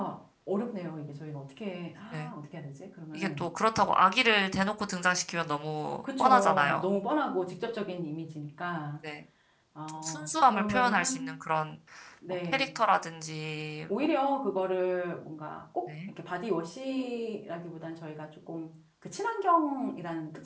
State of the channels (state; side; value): identical; both; correlation 1.00